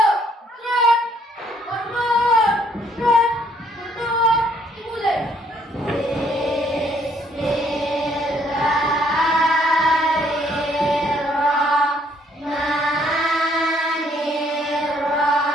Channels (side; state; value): both; normal; correlation 0.66